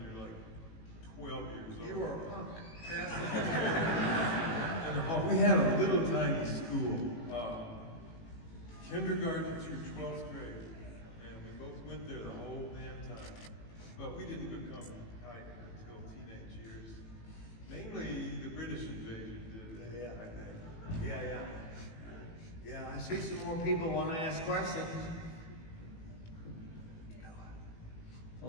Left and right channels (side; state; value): right; late; 18 ms